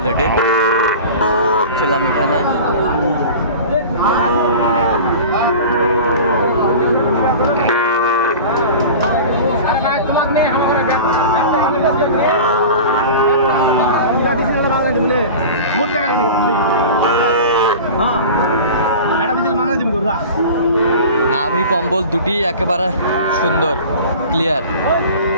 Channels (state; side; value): inverted; both; correlation -0.36